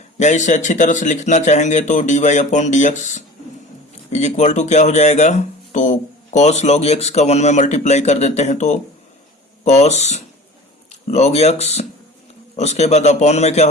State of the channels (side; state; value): both; normal; correlation 0.40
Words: या इसे अच्छी तरह से लिखना चाहेंगे तो dy/dx इज इक्वल टू क्या हो जाएगा, तो cos log x का 1 में मल्टीप्लाई कर देते हैं तो cos log x, उसके बाद अपॉन में क्या